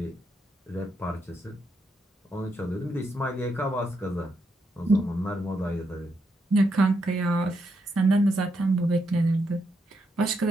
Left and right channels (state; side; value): normal; both; correlation 0.80